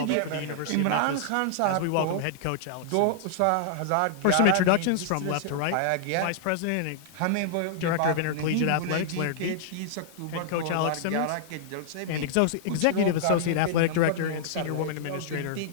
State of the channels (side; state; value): both; different; correlation -0.01